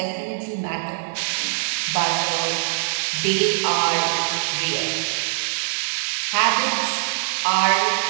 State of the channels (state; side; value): silent; left; digital silence